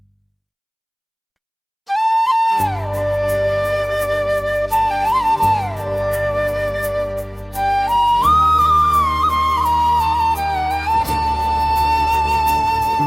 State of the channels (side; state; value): both; identical; correlation 1.00